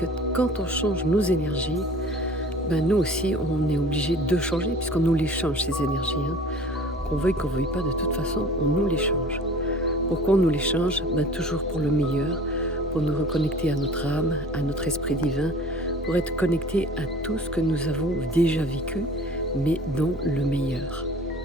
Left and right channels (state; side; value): normal; both; correlation 0.45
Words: quand on change nos énergies, nous aussi, on est obligé de changer puisqu'on nous les change, ces énergies. Qu'on veuille pas, de toute façon, on nous les change. Pourquoi on nous les change? Toujours pour le meilleur, pour nous reconnecter à notre âme, à notre esprit divin, pour être connecté à tout ce que nous avons déjà vécu, mais dans le meilleur.